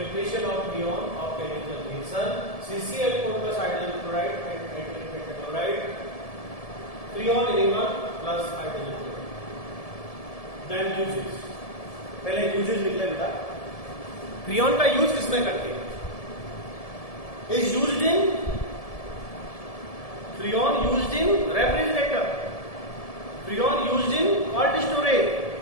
of freon of chemical reaction CCl4 plus hydrogen chloride and antimony pentachloride, freon element plus hydrogen chloride. Then uses, पहले यूजेस लिख ले बेटा। फ्रियोन का यूज किसमें करते हैं? Is used in, freon used in refrigerator, freon used in cold storage,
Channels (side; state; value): right; late; 1.7 ms